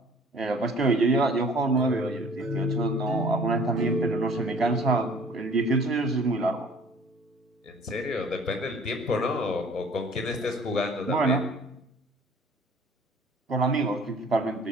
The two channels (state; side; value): normal; both; correlation 0.52